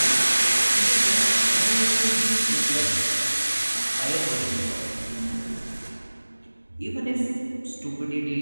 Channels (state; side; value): inverted; both; correlation -1.00